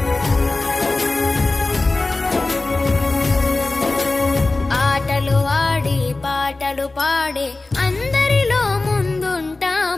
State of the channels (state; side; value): quieter; right; 3.3 dB